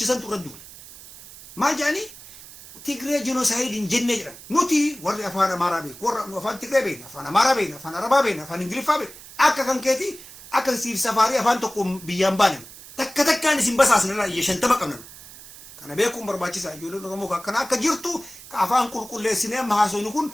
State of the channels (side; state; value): right; noise; hiss, 18 dB below the sound